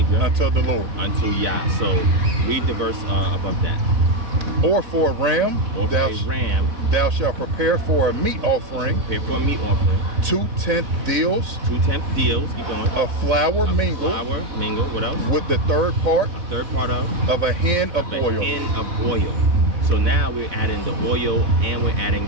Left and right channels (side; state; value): left; late; 4.0 ms